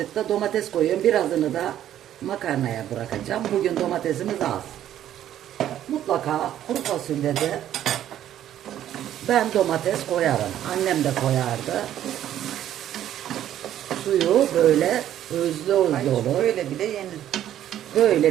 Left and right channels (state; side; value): quieter; left; 11.5 dB